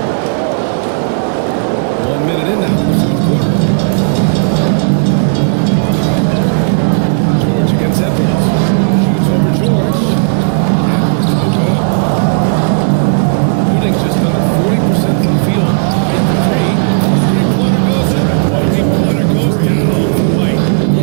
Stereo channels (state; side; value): silent; left; digital silence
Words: 1 minute in now in the fourth quarter. George against Edwards. Shoots over George. Edwards, no good. Shooting just under 40% from the field. White for 3. Three-pointer goes up. Three-pointer goes down for White.